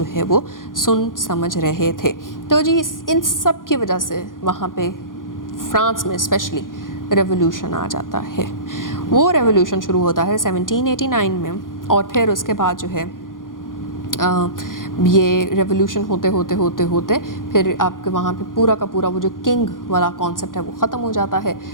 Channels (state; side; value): late; right; 0.90 ms